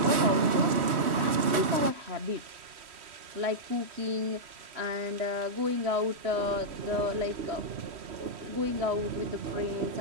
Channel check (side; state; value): left; late; 3.1 ms